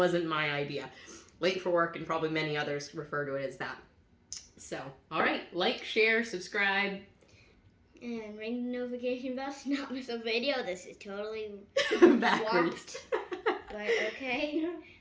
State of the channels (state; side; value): identical; both; correlation 1.00